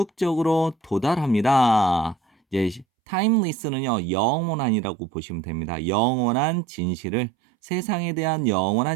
도달합니다. 이제 timeless는요, 영원한이라고 보시면 됩니다. 영원한 진실을, 세상에 대한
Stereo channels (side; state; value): left; drops out; at 2.9 s